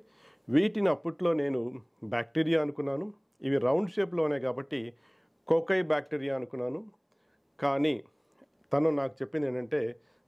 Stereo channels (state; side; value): identical; both; correlation 1.00